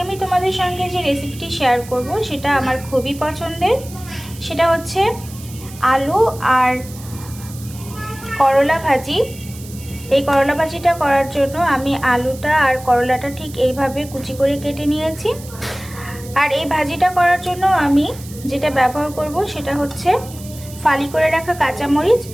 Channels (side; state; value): right; noise; hiss, 18 dB below the sound